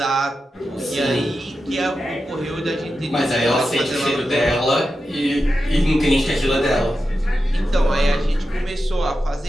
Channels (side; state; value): both; normal; correlation 0.90